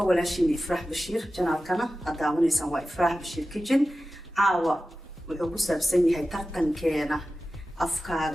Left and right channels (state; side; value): normal; both; correlation 0.94